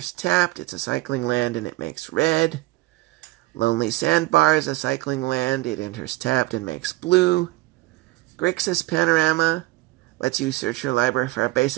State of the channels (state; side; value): quieter; left; 19.5 dB